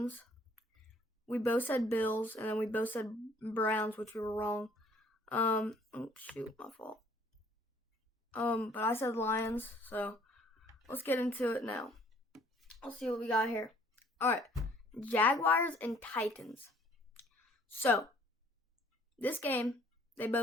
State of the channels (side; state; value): both; normal; correlation 0.58